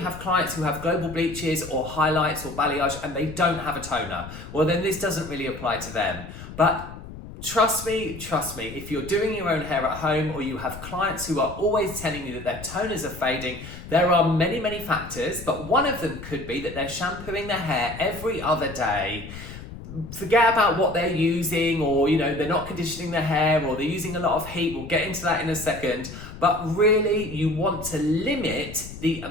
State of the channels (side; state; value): left; noise; rumble, 13 dB below the sound